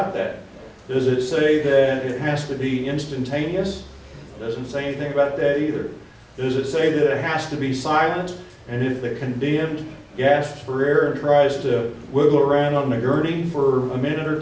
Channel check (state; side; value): identical; both; correlation 1.00